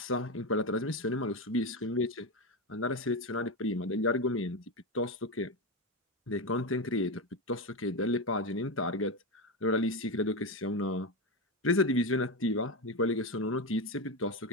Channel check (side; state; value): both; normal; correlation 0.13